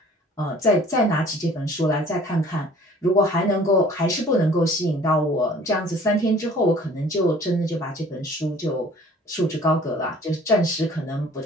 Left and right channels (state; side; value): normal; both; correlation 0.51